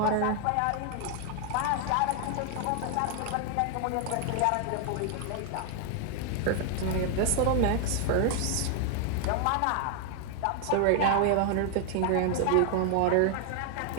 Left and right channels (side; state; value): both; different; correlation 0.00